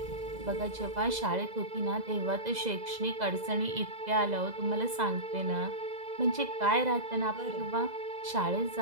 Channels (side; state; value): left; late; 2.0 ms